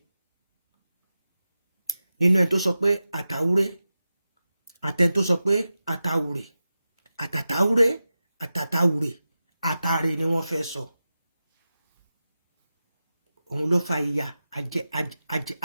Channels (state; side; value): inverted; both; correlation -0.93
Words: nínú ẹ̀ tó sọ pé àtàwúré, àtẹ̀ tó sọ pé àtàwúré, àtàtàwúré, àtàtàwúré, àtàrè ni wọ́n fẹ́ sọ. Òun ló fa ìyà